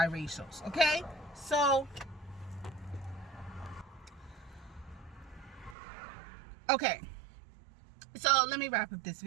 Okay? So... okay, so let me wrap up this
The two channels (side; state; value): left; drops out; at 5.8 s